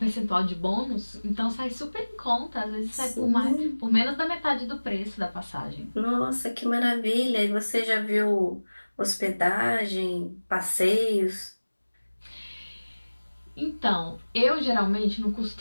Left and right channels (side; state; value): both; inverted; correlation -1.00